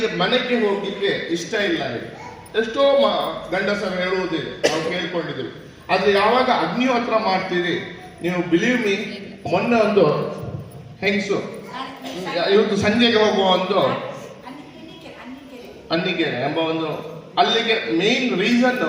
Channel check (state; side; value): identical; both; correlation 1.00